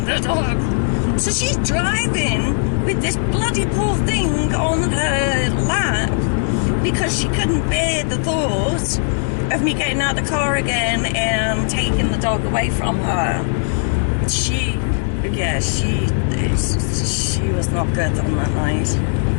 dog. So she's driving with this bloody poor thing on her lap because she couldn't bear the thought of me getting out of the car again and taking the dog away from her. She was not good on that night.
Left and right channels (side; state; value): right; silent; digital silence